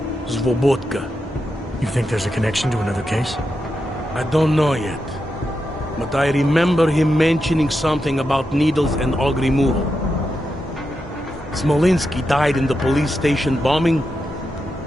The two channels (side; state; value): both; normal; correlation 0.87